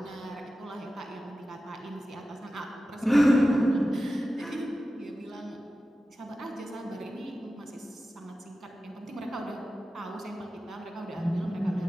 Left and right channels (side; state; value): both; normal; correlation 0.94